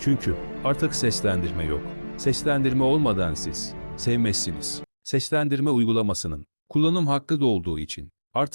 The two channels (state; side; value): inverted; both; correlation -1.00